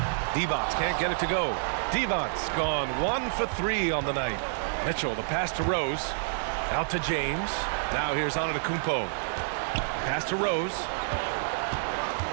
Divac can't get it to go. Divac's gone 1 for 3 on the night. Mitchell, the pass to Rose. Out to James. Now here's Antetokounmpo. Pass to Rose.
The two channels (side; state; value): left; silent; digital silence